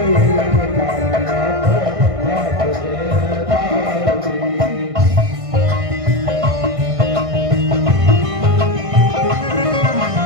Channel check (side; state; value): left; late; 1.6 ms